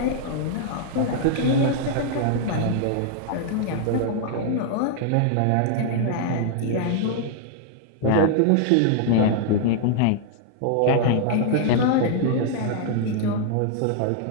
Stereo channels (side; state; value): both; different; correlation -0.01